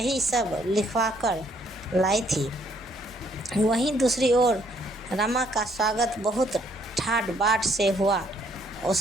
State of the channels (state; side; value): normal; both; correlation 0.67